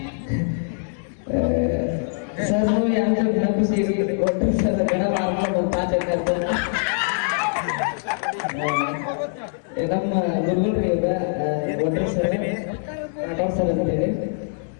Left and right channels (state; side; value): silent; right; digital silence